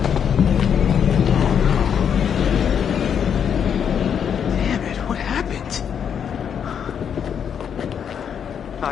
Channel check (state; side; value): quieter; right; 7.9 dB